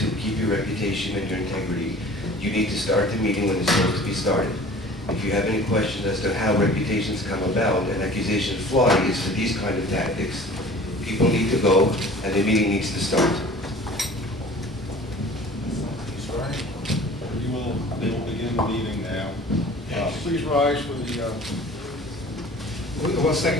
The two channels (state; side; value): normal; both; correlation 0.45